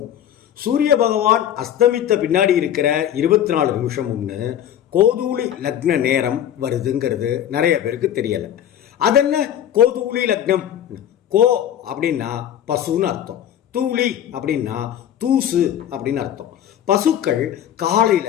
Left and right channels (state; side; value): quieter; right; 10.5 dB